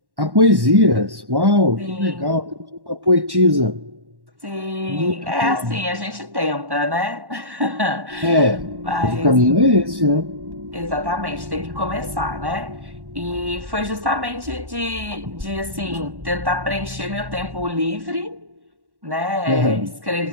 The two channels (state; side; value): late; left; 1.1 ms